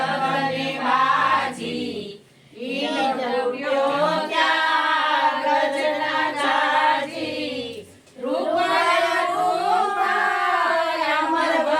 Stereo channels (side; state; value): both; identical; correlation 1.00